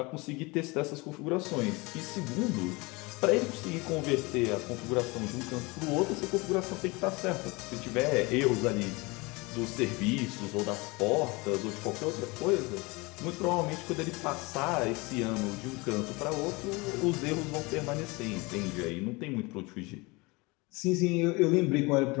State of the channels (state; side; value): quieter; right; 25.4 dB